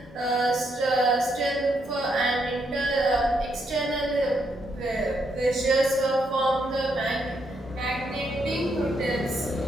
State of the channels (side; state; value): both; normal; correlation 0.77